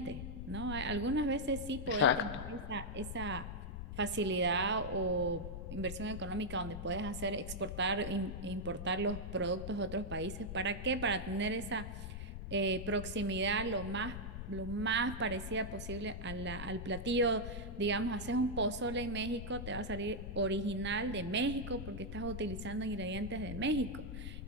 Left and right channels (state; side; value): noise; left; rumble, 7 dB below the sound